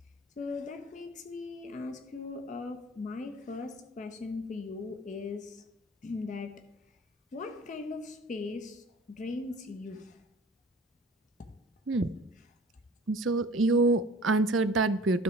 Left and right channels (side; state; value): both; normal; correlation 0.45